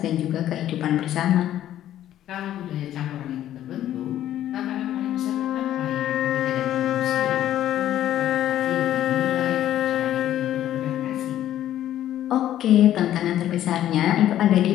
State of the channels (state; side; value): quieter; right; 12.2 dB